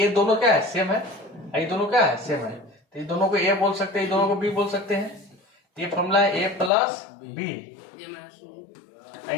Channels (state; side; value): drops out; right; at 6.7 s